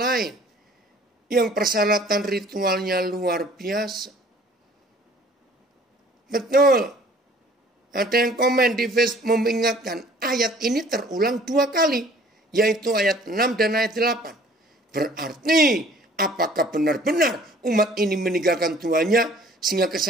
Yang persyaratan ritualnya luar biasa. Betul. Ada yang komen di Facebook mengingatkan. Ayat ini terulang 2 kali. Yaitu ayat 6 dan ayat 8. Berarti apakah benar-benar umat ini meninggalkan Tuhannya sehingga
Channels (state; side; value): normal; both; correlation 0.53